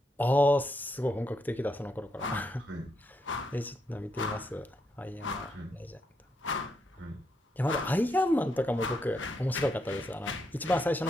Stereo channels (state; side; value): normal; both; correlation 0.80